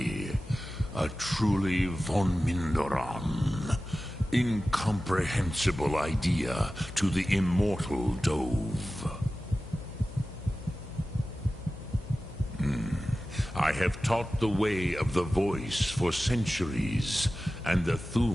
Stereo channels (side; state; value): left; noise; hum, 14 dB below the sound